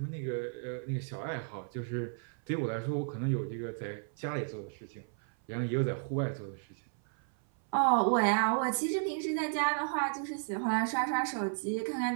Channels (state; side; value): silent; left; 56 dB below the other